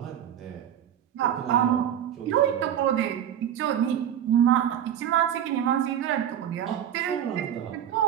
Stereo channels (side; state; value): left; quieter; 10.2 dB